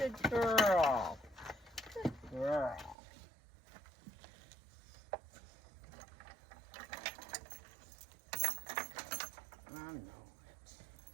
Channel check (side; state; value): left; drops out; at 3.0 s